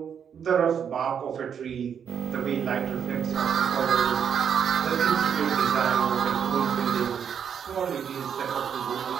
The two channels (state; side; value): quieter; left; 7.8 dB